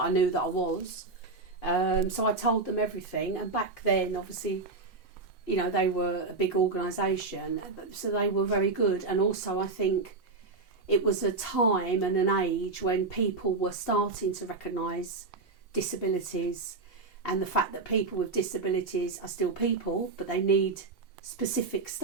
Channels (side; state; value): left; quieter; 3.8 dB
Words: knew that I was. So I told them everything. And back then, obviously, they were a big organisation, so they were very good. And also I think it was a time and an age when people were starting to recognise disabilities, and the fact that people with disabilities are still people, but they need specific